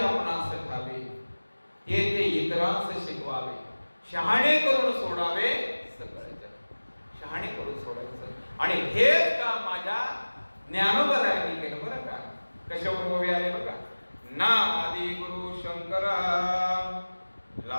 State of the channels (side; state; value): both; inverted; correlation -1.00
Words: ठावे ते ते इतरांस शिकवावे, शहाणे करून सोडावे सगळे जग. शहाणे करून सोडायचं. आणि हेच का माझ्या ज्ञानोबरायांनी केलं बरं का. कशावर ओवी आले बघा, ना आदि गुरु शंकरा